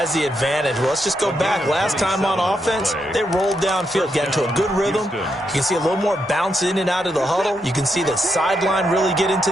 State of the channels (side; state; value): both; normal; correlation 0.81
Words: the advantage? Well, let's just go back. Last time on offense, they rolled downfield, got into a good rhythm. You can see a little more bounce in and out of the huddle. You can see the sideline really get into